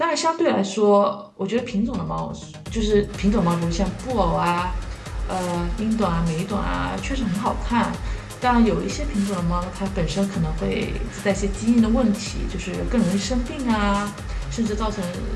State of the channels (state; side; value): identical; both; correlation 1.00